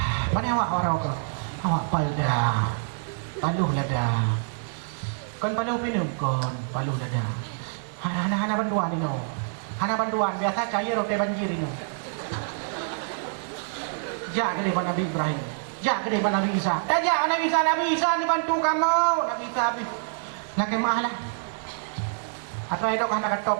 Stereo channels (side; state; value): left; silent; digital silence